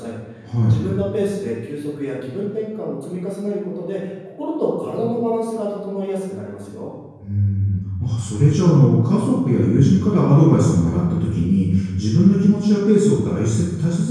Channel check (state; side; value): identical; both; correlation 1.00